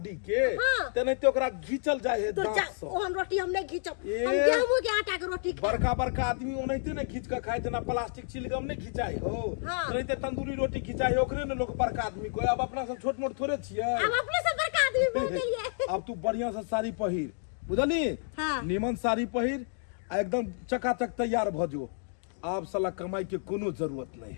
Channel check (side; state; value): right; silent; digital silence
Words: के, तेनाहिते ओकरा घीचल जाए है दांत से। ओहन रोटी हम नहीं घीचब, हम गेहूं के आटा के रोटी खाए। बड़का आदमी ओनाहिते नहीं घीच के खाए, जना प्लास्टिक चिलगम नहीं घिचाई हो, तेनाहिते तंदूरी रोटी घिचाई ओकरे ने लोग बड़का आदमी को। अब अपना सब छोट मोट थोड़े छियै, अब अपने से बड़का आदमी बोल गेलिए। अब तू बढ़िया से साड़ी पहिर, बुझली, निमन साड़ी पहिर, एकदम चकाचक तैयार भ जो। आप साला कमाई के कोनो जरूरत नहीं